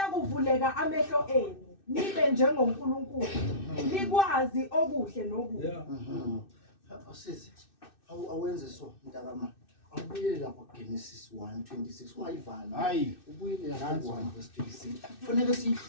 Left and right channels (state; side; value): late; right; 2.6 ms